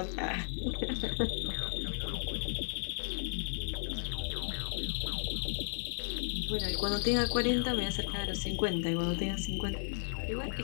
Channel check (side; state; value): right; silent; digital silence